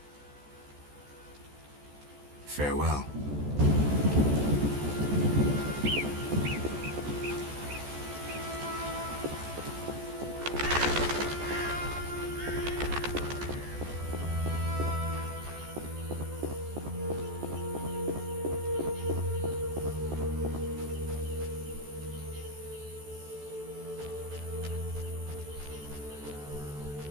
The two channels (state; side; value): late; left; 14 ms